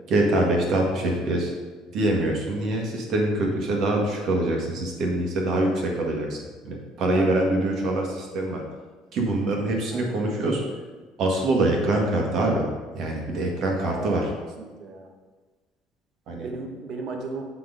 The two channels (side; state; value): both; normal; correlation 0.61